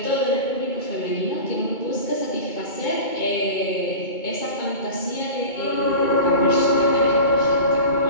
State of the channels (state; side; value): late; right; 2.2 ms